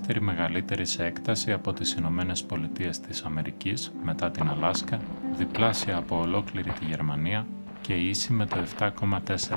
μεγαλύτερη σε έκταση από τις Ηνωμένες Πολιτείες της Αμερικής μετά την Αλάσκα, διπλάσια από ολόκληρη τη Γερμανία και ίση με το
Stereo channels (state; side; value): inverted; both; correlation -1.00